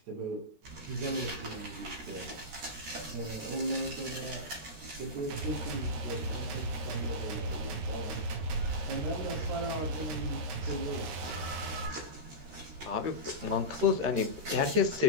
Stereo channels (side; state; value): left; late; 13 ms